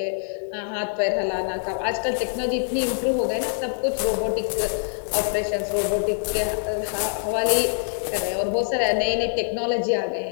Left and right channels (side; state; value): right; silent; digital silence